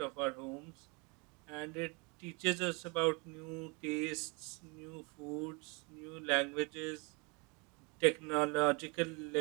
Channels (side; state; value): left; quieter; 30.8 dB